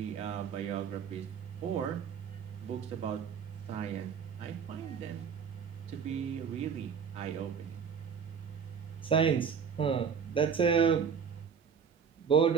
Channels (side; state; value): left; quieter; 6.7 dB